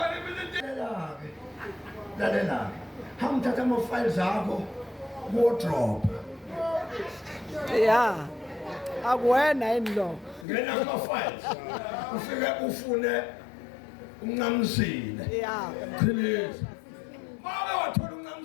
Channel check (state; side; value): drops out; right; at 10.5 s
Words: mina lalela hangithatha ama-files akho wardrobe ya akuwena yini lo ngena kuma-files ufike ufune uNcamisile ya Qhiliza make wathola